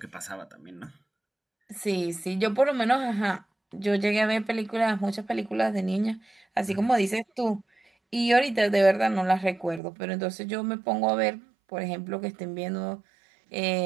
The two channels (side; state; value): left; drops out; at 9.8 s